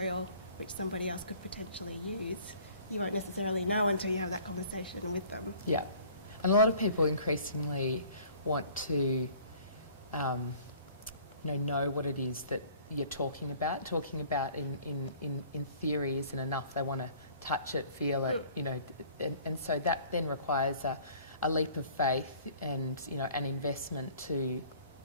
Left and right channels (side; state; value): both; inverted; correlation -0.52